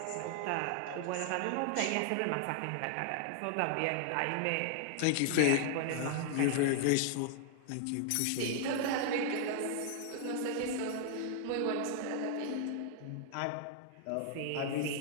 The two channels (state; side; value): different; both; correlation 0.00